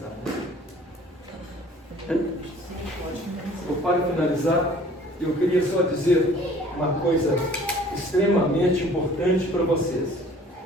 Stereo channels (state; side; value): normal; both; correlation 0.52